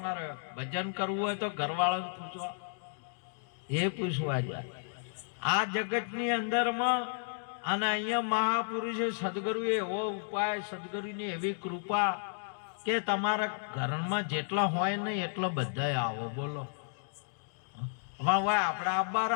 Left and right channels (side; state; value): right; silent; digital silence